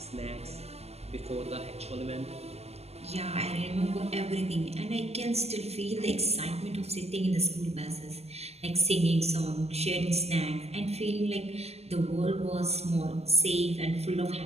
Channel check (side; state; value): left; late; 0.30 ms